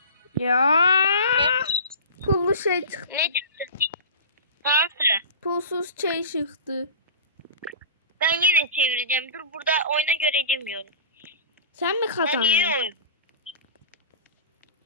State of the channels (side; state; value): both; inverted; correlation -0.34